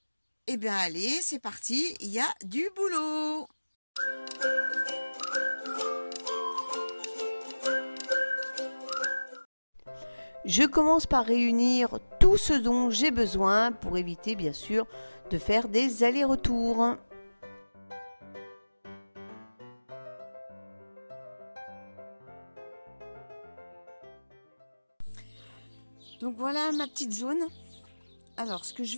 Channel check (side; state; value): both; inverted; correlation -1.00